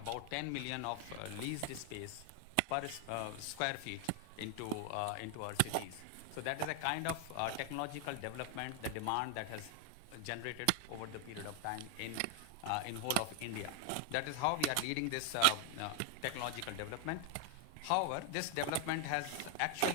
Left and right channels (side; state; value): both; different; correlation 0.00